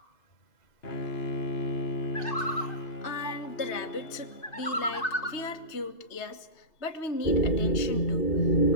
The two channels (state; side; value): late; right; 3.2 ms